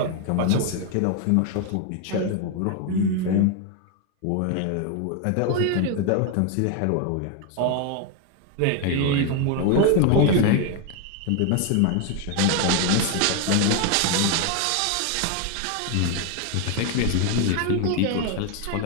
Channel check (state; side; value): different; both; correlation 0.01